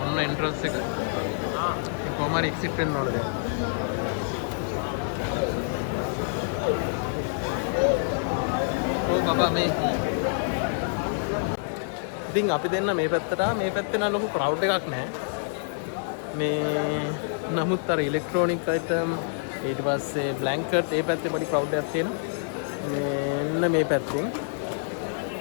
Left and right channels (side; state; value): right; silent; digital silence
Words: ඔන්න එන්ට්‍රන්ස් එක. කොහොම හරි එක්සිට් වෙන්න ඕනේ දැන්. බබා මේ ඉතින් අපි දෙන්න මේ පැත්තට මේ පැත්තේ නම් ලොකු ක්‍රවුඩ් එකක් නැහැ. මේ නමුත් අර ඉලෙක්ට්‍රොනික අයිටම් ඊට පස්සේ බ්ලැන්කට් ඒ පැත්තේ පොඩි ක්‍රවුඩ් එකක් තියෙනවා. මෙන්න මේ පැත්තෙන්